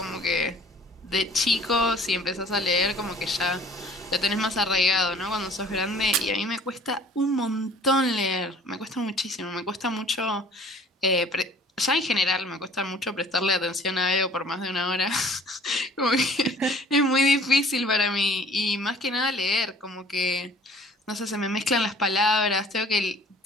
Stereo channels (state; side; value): normal; both; correlation 0.51